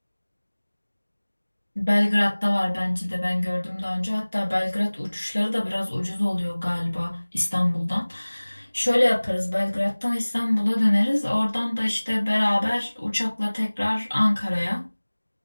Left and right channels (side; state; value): both; inverted; correlation -1.00